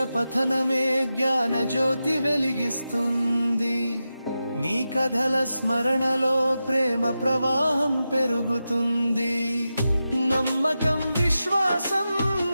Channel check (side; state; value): both; inverted; correlation -0.91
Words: పఠనమే జ్ఞాన జ్యోతి వెలిగిస్తుంది. నీ కథల స్మరణలో ప్రేమ ప్రవాహం పెరుగుతుంది. నమ్మకం విశ్వాసం